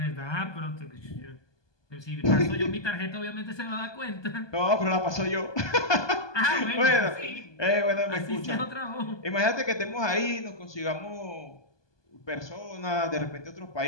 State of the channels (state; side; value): late; right; 1.2 ms